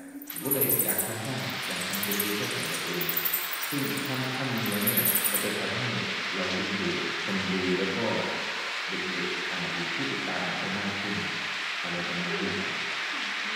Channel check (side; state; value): both; identical; correlation 1.00